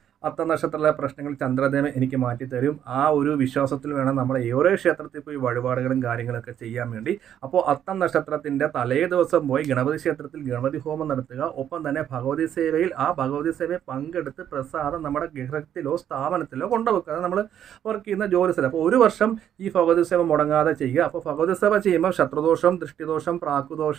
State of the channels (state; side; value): quieter; left; 10.0 dB